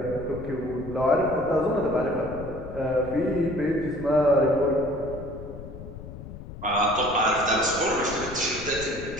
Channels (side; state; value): left; noise; rumble, 13 dB below the sound